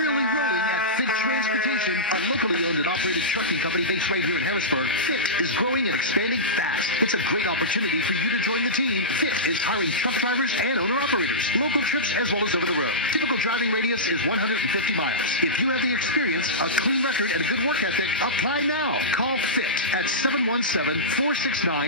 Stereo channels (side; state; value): both; normal; correlation -0.16